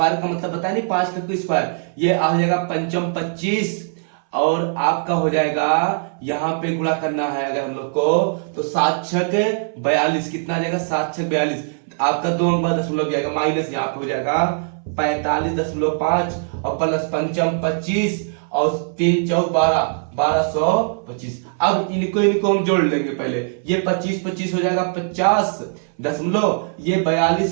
का मतलब बताया नहीं, 5 का स्क्वायर, ये आ जाएगा 5 25, और आपका हो जाएगा यहाँ पे गुणा करना है अगर हम लोग को, तो 7 6 42, कितना आ जाएगा 7 6 42, आपका 2 अंक बाद दशमलव जाएगा, माइनस यहाँ पे हो जाएगा 45.5 और प्लस 5 25 और 3 4 12, 1225। अब इनको हम जोड़ लेंगे पहले, ये 25 25 हो जाएगा 50 दशमलव, ये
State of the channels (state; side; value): silent; left; 61 dB below the other